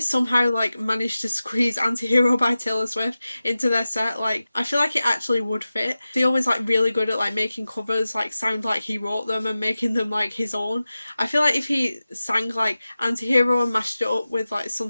like managed to squeeze Anti-Hero by Taylor Swift into their set, like I feel like it actually would fit. Theo was like really good at like making covers like sound like he wrote them and making them like his own. I feel like if he sang like Anti-Hero and mashed it up with like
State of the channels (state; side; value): inverted; both; correlation -0.95